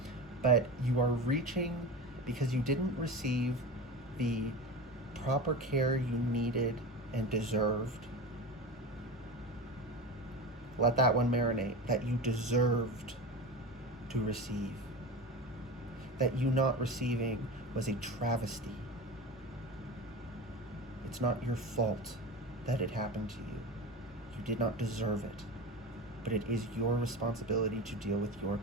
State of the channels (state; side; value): normal; both; correlation 0.27